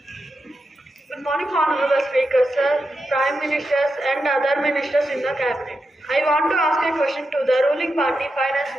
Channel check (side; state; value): both; normal; correlation 0.87